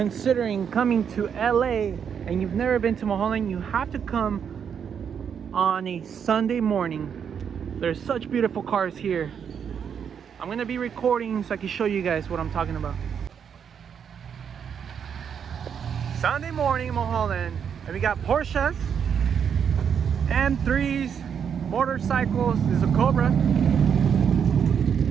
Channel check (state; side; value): quieter; left; 7.6 dB